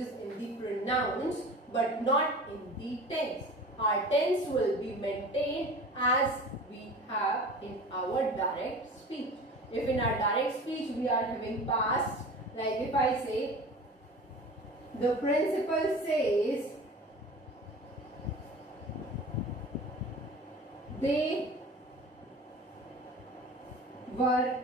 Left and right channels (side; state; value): both; normal; correlation 0.38